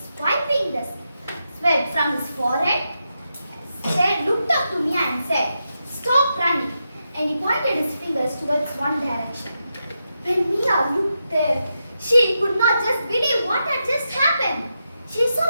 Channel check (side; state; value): both; inverted; correlation -0.86